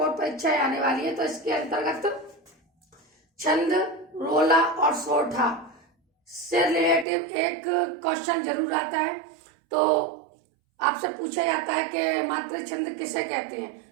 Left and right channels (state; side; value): drops out; left; at 7.1 s